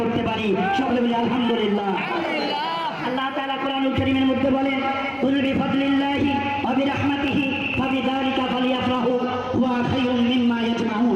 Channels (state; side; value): identical; both; correlation 1.00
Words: করতে পারি। সকলে বলি আলহামদুলিল্লাহ। আল্লাহ তাআলা কোরআনুল কারীমের মধ্যে বলেন, কুল বিফাদলিল্লাহি ওয়া বিরাহমাতিহি ফাবিযালিকা ফালইফরাহু হুয়া খায়রুম মিম্মা